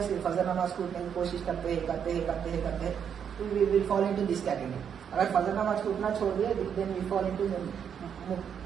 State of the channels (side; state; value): left; quieter; 7.9 dB